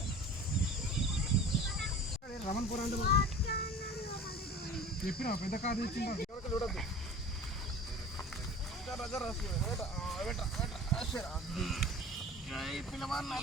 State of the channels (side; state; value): both; normal; correlation 0.40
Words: రమణపూర్ అంటే చెప్పిన పెద్ద కాదు ఇచ్చిందా చూడద్దు. పిల్లవాడు